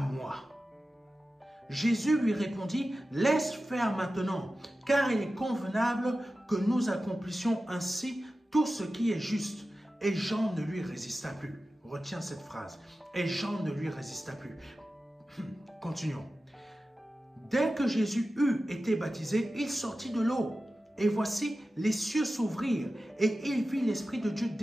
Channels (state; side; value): normal; both; correlation 0.94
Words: moi. Jésus lui répondit, laisse faire maintenant, car il est convenable que nous accomplissions ainsi tout ce qui est juste. Et Jean ne lui résista plus. Retiens cette phrase. Et Jean ne lui résista plus. Continuons. Dès que Jésus eut été baptisé, il sortit de l'eau. Et voici, les cieux s'ouvrirent, et il vit l'Esprit de Dieu